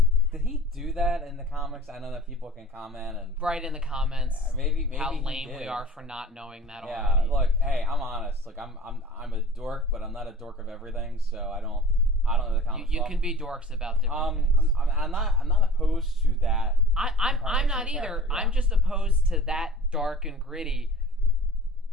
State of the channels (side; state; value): both; normal; correlation 0.42